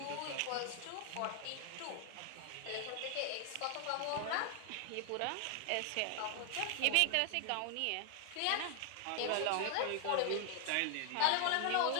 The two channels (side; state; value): both; different; correlation 0.00